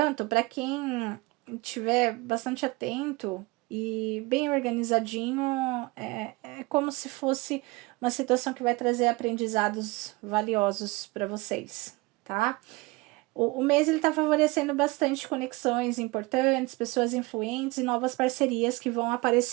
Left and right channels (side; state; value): left; quieter; 23.8 dB